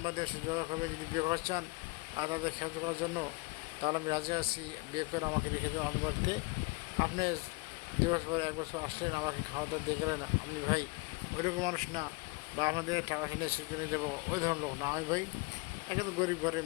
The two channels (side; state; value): right; quieter; 26.5 dB